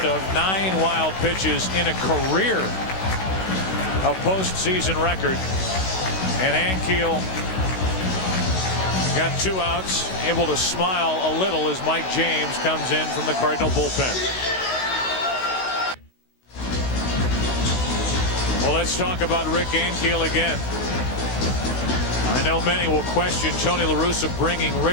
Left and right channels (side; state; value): right; late; 16 ms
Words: of. 9 wild pitches in a career. A postseason record. And Ankiel got 2 outs, able to smile a little as Mike James comes in from the Cardinal bullpen. Well, let's talk about Rick Ankiel again. I know many will question Tony La Russa bringing